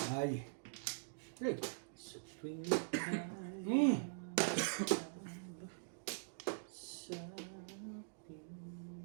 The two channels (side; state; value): left; silent; digital silence